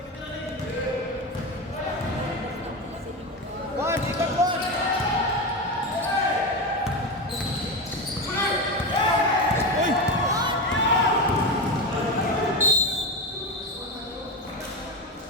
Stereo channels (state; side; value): normal; both; correlation 0.18